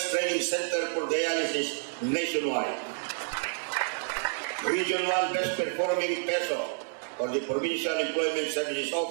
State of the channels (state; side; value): silent; left; digital silence